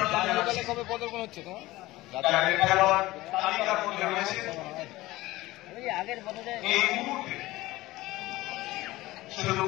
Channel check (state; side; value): quieter; right; 18.4 dB